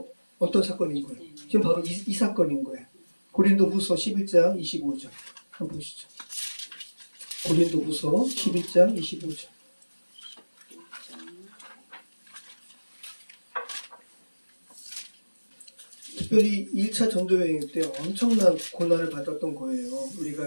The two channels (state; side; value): inverted; both; correlation -1.00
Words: 어떤 사건인 거예요? 지금 바로 이 사건인 거예요. 고린도후서 11장 25절 한번 보시죠. 고린도후서 11장 25절. 특별히 1차 전도여행 때 엄청난 고난을 받았던 거예요. 우리가